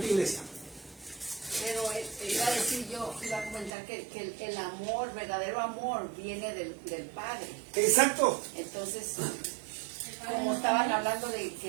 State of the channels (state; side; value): drops out; left; at 3.7 s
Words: iglesia. Pero iba a decir yo, iba a comentar que el amor, verdadero amor, viene del Padre. Exacto. Entonces, como estaban hablando de